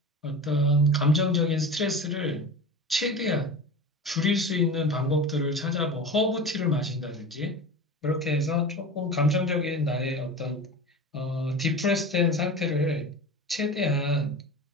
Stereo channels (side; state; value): both; normal; correlation 0.32